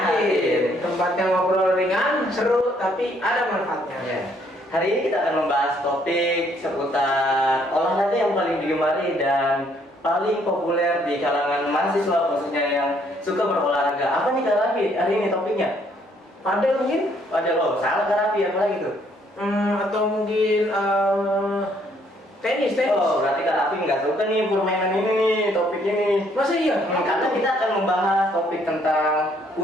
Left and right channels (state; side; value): normal; both; correlation 0.67